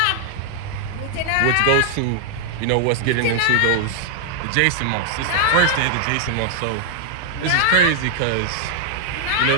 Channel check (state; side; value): different; both; correlation -0.01